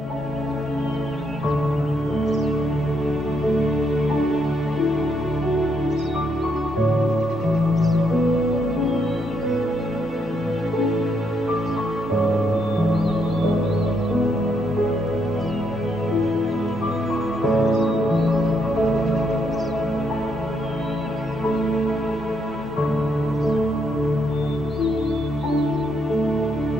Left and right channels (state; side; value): normal; both; correlation 0.75